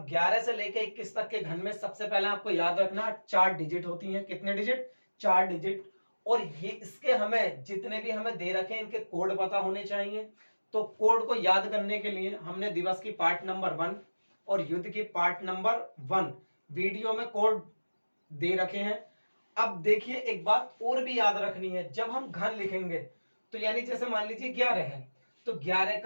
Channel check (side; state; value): both; inverted; correlation -1.00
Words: 11 से लेके 21 तक के घन में सबसे पहले आपको याद रखना 4 डिजिट होती हैं। कितने डिजिट? 4 डिजिट। और ये इसके हमें जितने भी हमें दे रखे हैं इनके कोड पता होने चाहिए। तो कोड को याद करने के लिए हमने दिवस की पार्ट नंबर 1 और युद्ध की पार्ट नंबर 1 वीडियो में कोड दे रखे हैं। अब देखिए, एक बात और भी याद रखनी है, जब हम घन लिखेंगे तो यानी जैसे मान लीजिए 11 है तो 11